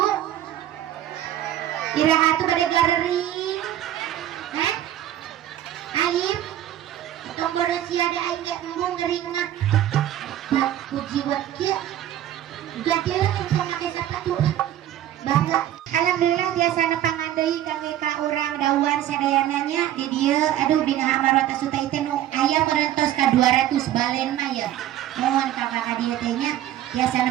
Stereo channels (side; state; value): left; quieter; 12.2 dB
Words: Iraha tuh bade galeri. Heh? Alim. Tong bodo sia da aing ge embung gering mah. Puji buat kieu. Gade engkong make sapatu. Bangga. Alhamdulillah biasa nepangan deui kangge ka urang dawan sadayananya di dieu. Aduh bina amarot asuta teh nu aya merentos ka 200 balen mah ya. Mohon kakak ka dieu teh nya biasa